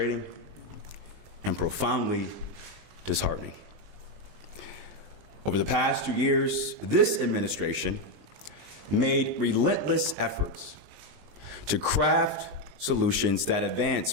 and profoundly disheartening. Over the past 2 years, this administration made relentless efforts to craft solutions that advance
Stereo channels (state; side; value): late; left; 20 ms